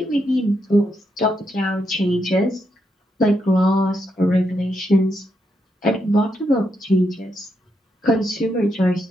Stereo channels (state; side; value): normal; both; correlation 0.81